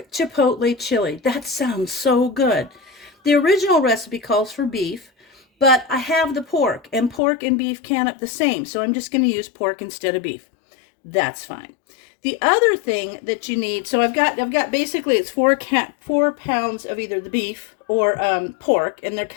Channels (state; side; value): drops out; right; at 7.2 s